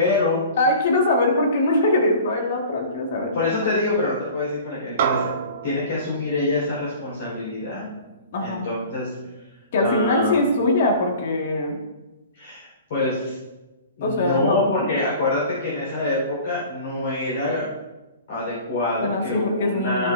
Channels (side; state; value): both; inverted; correlation -0.43